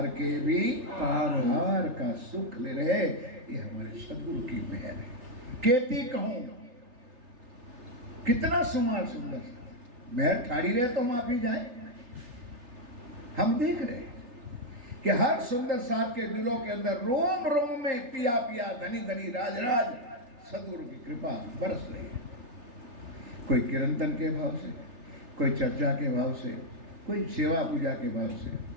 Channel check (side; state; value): left; late; 3.3 ms